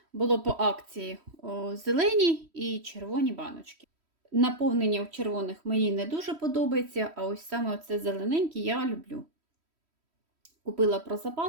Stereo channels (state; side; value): late; left; 3.1 ms